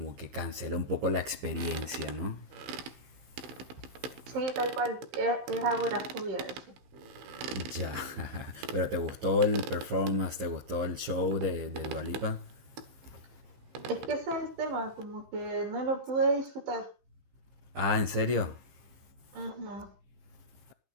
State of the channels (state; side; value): late; left; 15 ms